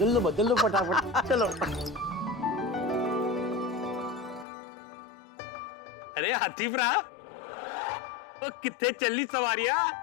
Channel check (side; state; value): right; drops out; at 4.5 s